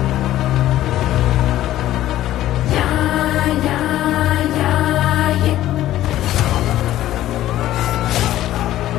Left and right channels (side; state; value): right; quieter; 13.8 dB